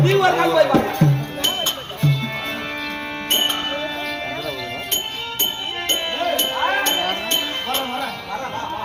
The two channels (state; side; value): identical; both; correlation 1.00